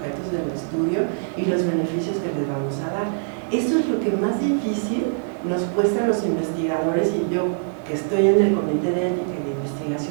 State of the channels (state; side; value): silent; left; digital silence